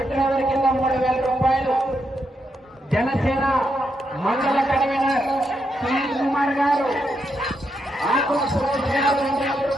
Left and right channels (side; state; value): both; normal; correlation 0.81